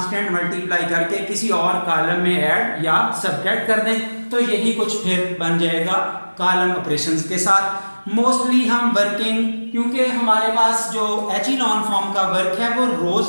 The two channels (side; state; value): both; inverted; correlation -1.00